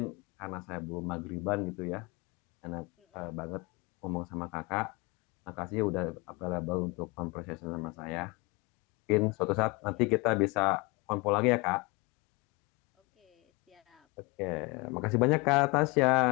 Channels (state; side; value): quieter; right; 26.8 dB